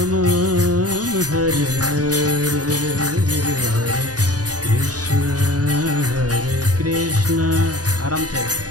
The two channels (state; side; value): late; left; 0.68 ms